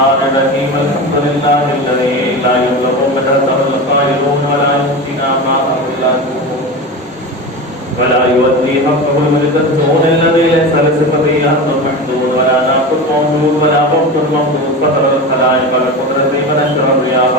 الرحيم. الحمد لله الذي لا يبلغ مدته القائلون ولا يؤتينا ما أملاته ولا يؤدي حقه الملكتون الذي ليس لصفته أمر محدود ولا ناقص موجود ولا وقت ممدود فطر الخلائق بقدرته ونشر الرياح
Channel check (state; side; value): normal; both; correlation 0.26